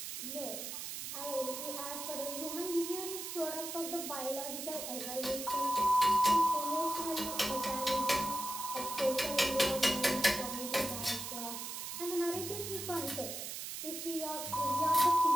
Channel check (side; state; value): right; noise; hiss, 6 dB below the sound